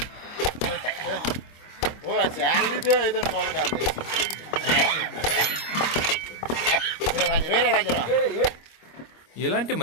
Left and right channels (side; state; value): right; late; 25 ms